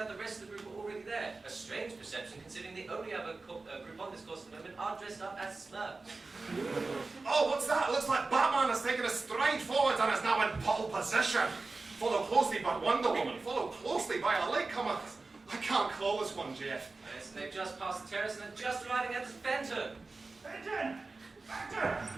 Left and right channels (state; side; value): quieter; left; 3.6 dB